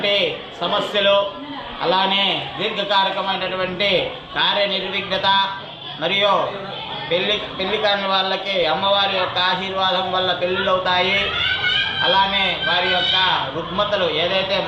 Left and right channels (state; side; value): identical; both; correlation 1.00